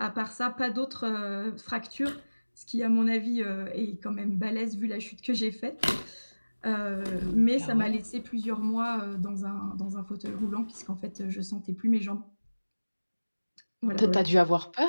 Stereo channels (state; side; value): inverted; both; correlation -1.00